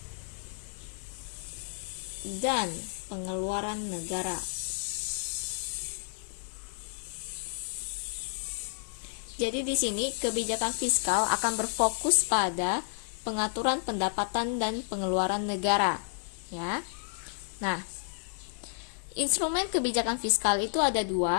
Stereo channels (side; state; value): right; silent; digital silence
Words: dan pengeluaran negara. Jadi di sini kebijakan fiskal akan berfokus pada pengaturan pendapatan dan pengeluaran negara, ya. Nah, instrumen kebijakan fiskal itu ada